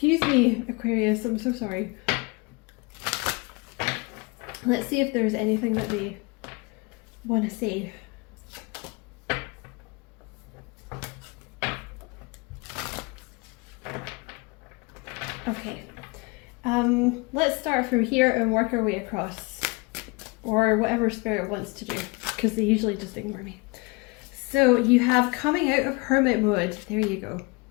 me, Aquarius, I'm so sorry. Let's see if there's anything that they want to say. Okay, let's start from here and work our way across, or whatever Spirit wants to do, because they usually just ignore me. So you have coming out of hermit mode. There you go.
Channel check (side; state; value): right; quieter; 27.3 dB